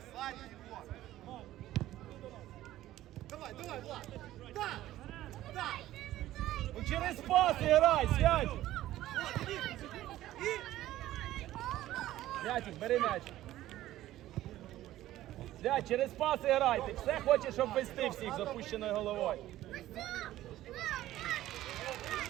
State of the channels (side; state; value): left; quieter; 14.5 dB